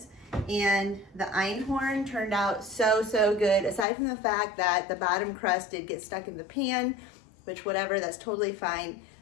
and the einhorn turned out so good. Aside from the fact that the bottom crust did get stuck in the pan, which whatever, that's totally fine.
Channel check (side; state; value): right; drops out; at 3.9 s